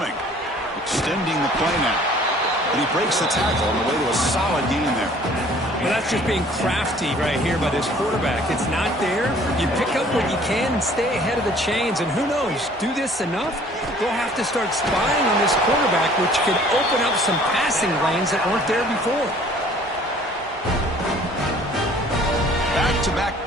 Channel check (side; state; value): both; normal; correlation 0.54